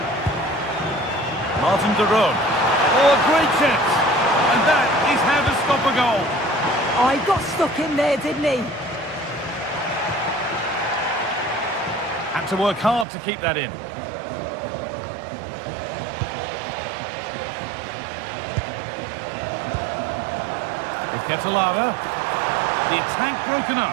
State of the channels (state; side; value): drops out; left; at 13.1 s